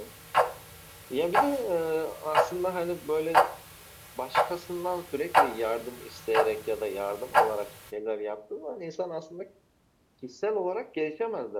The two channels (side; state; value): both; identical; correlation 1.00